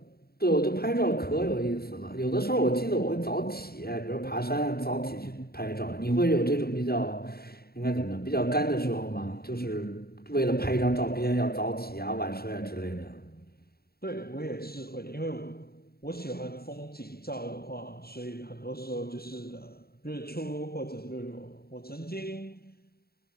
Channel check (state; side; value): late; right; 0.45 ms